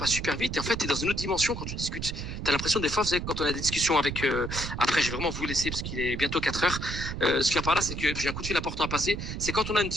super vite, et en fait tu es dans une autre dimension quand tu discutes. Tu as l'impression des fois, vous savez, quand on a des discussions avec après je vais vraiment vous laisser parce qu'il est bientôt 4 heures, ce qu'il y a par là, c'est que j'ai un coup de fil important à passer, c'est quand on a une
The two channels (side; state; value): right; noise; rumble, 6 dB below the sound